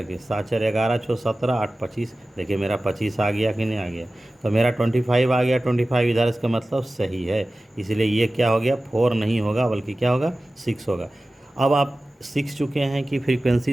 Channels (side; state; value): both; normal; correlation 0.96